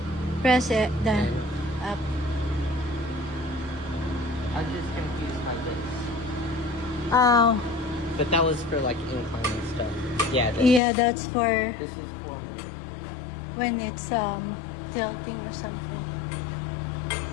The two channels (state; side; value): drops out; right; at 10.8 s